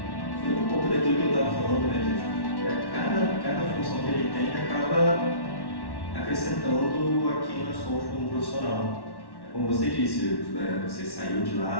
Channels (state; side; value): late; right; 1.1 ms